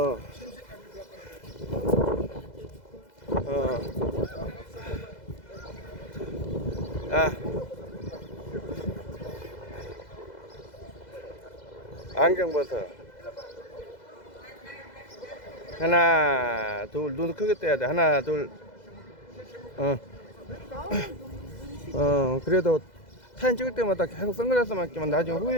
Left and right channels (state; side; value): late; right; 2.0 ms